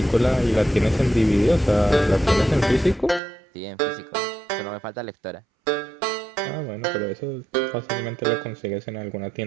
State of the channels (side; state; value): left; drops out; at 3.2 s